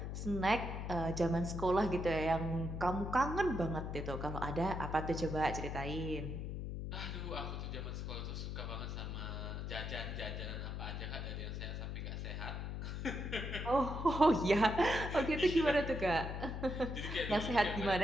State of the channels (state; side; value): noise; left; hum, 4 dB below the sound